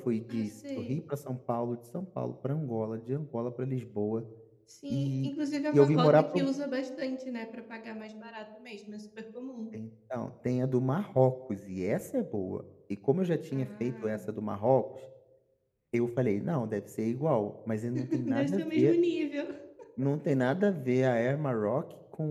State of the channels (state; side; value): identical; both; correlation 1.00